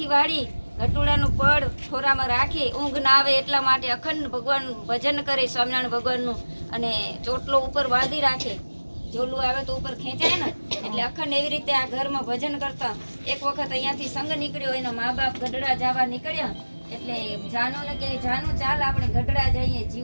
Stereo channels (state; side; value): inverted; both; correlation -1.00